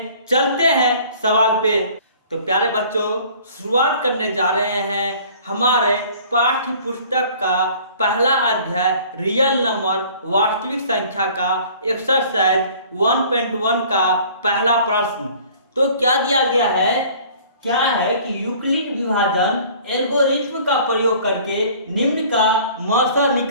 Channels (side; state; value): both; inverted; correlation -0.51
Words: चलते हैं सवाल पे। तो प्यारे बच्चों, शुरुआत करने जा रहे हैं हमारे पाठ्य पुस्तक का पहला अध्याय रियल नंबर वास्तविक संख्या का एक्सरसाइज 1.1 का पहला प्रश्न। तो क्या दिया गया है, क्या है कि यूक्लिड विभाजन एल्गोरिथ्म का प्रयोग करके निम्न का मौसा